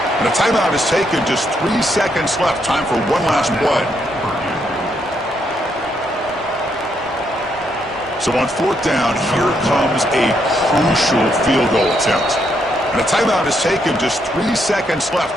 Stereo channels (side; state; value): both; normal; correlation 0.76